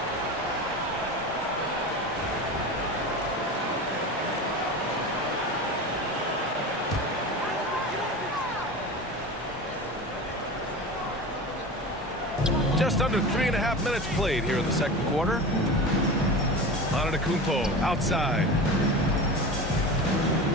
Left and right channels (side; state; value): both; normal; correlation 0.30